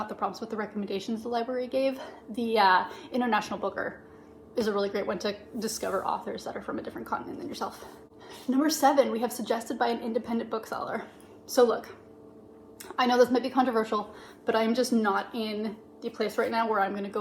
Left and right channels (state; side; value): identical; both; correlation 1.00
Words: the prompts, but the recommendations the library gave, the International Booker is a really great one to discover authors that are from a different continent than yourself. Number 7, we have Suggested by an Independent Bookseller. So look, I know this might be controversial, but I'm just not in the place right now where I'm going to